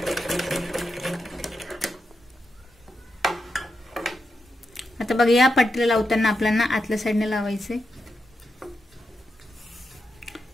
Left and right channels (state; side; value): normal; both; correlation 0.86